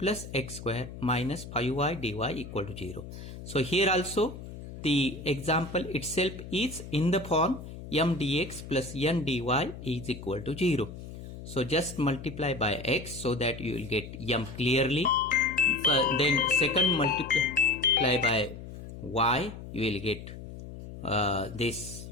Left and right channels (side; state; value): left; noise; hum, 12 dB below the sound